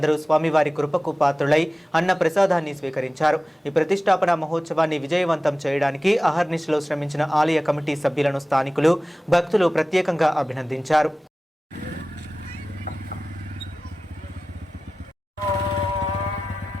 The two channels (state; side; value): normal; both; correlation 0.96